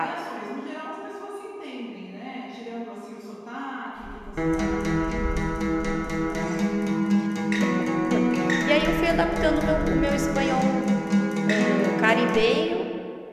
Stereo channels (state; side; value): identical; both; correlation 1.00